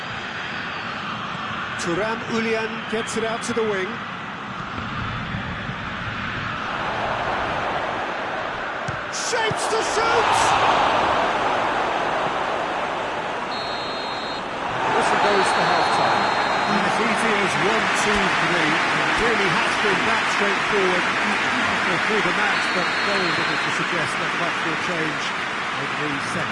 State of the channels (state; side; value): identical; both; correlation 1.00